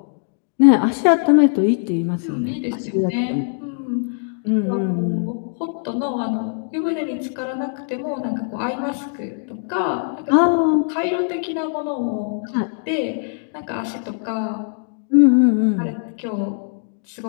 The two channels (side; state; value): right; silent; digital silence